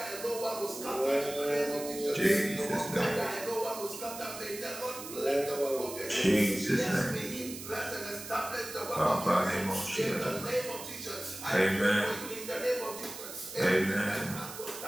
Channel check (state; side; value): noise; right; hiss, 11 dB below the sound